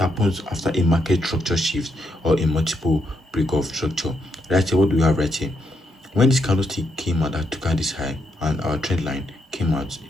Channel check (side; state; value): both; normal; correlation 0.79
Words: after a market structure shift or a multiple break of structure. Right here, what do we have right here? When this candlestick came out that took out this high and our trend line came out,